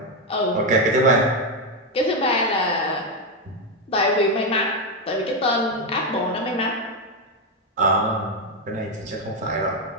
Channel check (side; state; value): both; normal; correlation 0.06